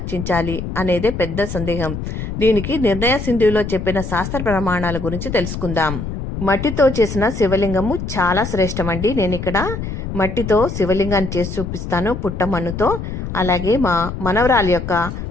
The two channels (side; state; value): left; noise; rumble, 6 dB below the sound